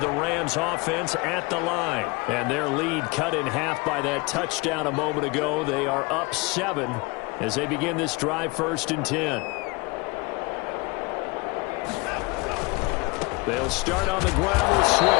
the Rams offense at the line. And their lead cut in half by that touchdown a moment ago. They are up 7 as they begin this drive 1st and 10. They'll start on the ground with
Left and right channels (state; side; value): quieter; right; 26.0 dB